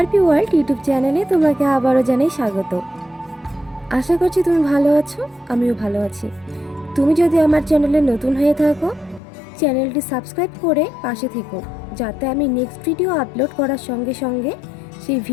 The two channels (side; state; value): right; drops out; at 9.2 s